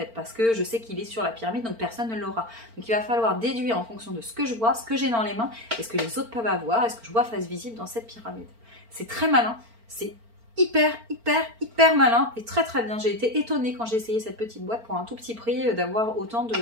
parce que je sais qu'il est sur la pyramide, donc personne ne l'aura. Donc il va falloir déduire en fonction de ce que je vois, ce que j'ai dans les mains, et ce que les autres peuvent avoir, et ce que je vois face visible dans cette pyramide. C'est très malin, c'est hyper malin et très très bien. J'ai été étonnée quand j'ai essayé cette petite boîte pour un tout petit prix d'avoir autant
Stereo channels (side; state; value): left; late; 4.4 ms